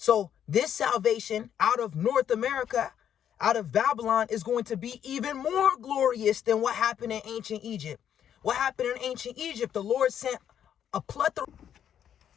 this salvation out of North America, out of Babylon, is going to be even more glorious than what happened in ancient Egypt. What happened in ancient Egypt? The Lord sent a plethora.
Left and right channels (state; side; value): quieter; right; 9.5 dB